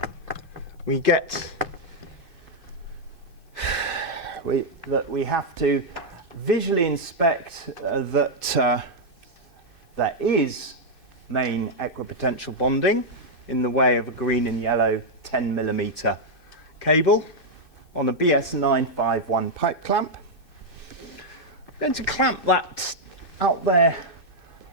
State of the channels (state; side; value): late; left; 2.6 ms